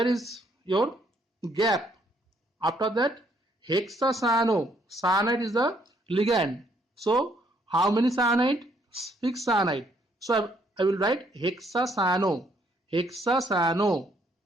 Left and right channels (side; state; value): both; normal; correlation 0.68